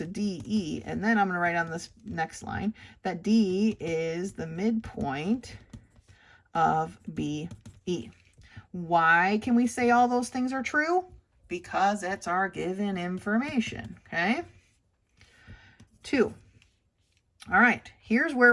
DE, and then I'm going to write on this next line that D is the midpoint of BE. Why can we say all those things are true? Because it's our given information, okay? 2. All right, here's where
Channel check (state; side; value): identical; both; correlation 1.00